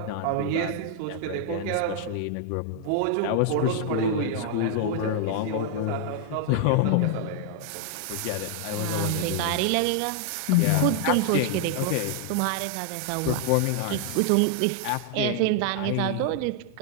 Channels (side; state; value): both; different; correlation 0.00